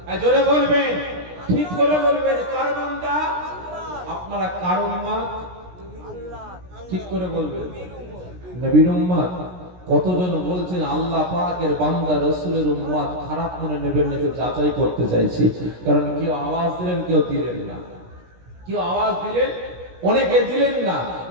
জোরে বলবেন, ঠিক করে বলবেন, কার বান্দা? আপনারা কার উম্মত? ঠিক করে বলবেন, নবীর উম্মত। কতজন বলছেন আল্লাহ পাকের বান্দা রাসূলের উম্মত? খারাপ মনে নেবেন না, তো যাচাই করতে চাইছি। কারণ কেউ আওয়াজ দিলেন, কেউ দিলেন না। কেউ আওয়াজ দিলেন, অনেকে দিলেন না,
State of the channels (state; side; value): late; left; 17 ms